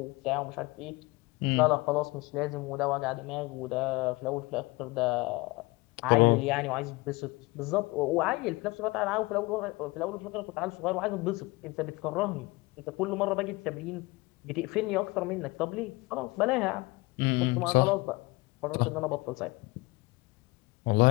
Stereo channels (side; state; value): right; quieter; 23.4 dB